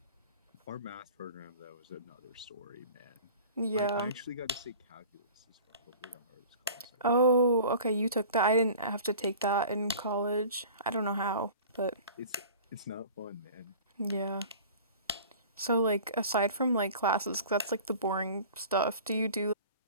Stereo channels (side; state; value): both; inverted; correlation -0.43